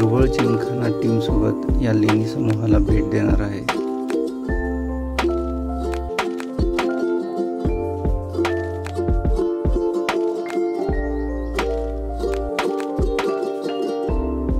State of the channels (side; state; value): both; identical; correlation 1.00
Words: जिमखाना टीमसोबत या लेणी समूहाला भेट देणार आहे.